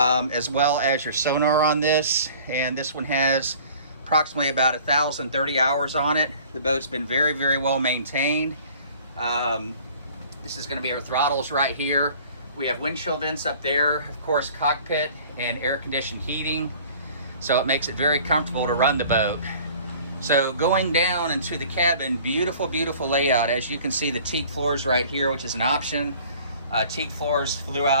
well as your sonar on this. And this one has approximately about 1,030 hours on it. The boat's been very well maintained. This is going to be our throttles right here. We have windshield vents up there, of course, cockpit and air conditioned heating. So it makes it very comfortable to run the boat. So going down into the cabin, beautiful layout. As you can see, the teak floors right here, which is an option. Teak floors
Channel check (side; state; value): both; inverted; correlation -0.49